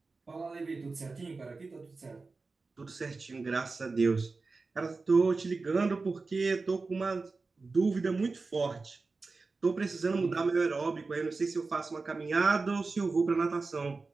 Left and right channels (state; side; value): quieter; left; 4.0 dB